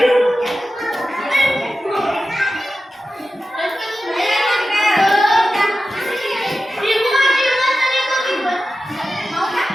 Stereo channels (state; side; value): normal; both; correlation 0.93